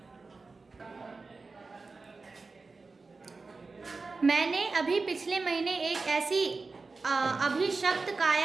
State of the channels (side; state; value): left; quieter; 4.0 dB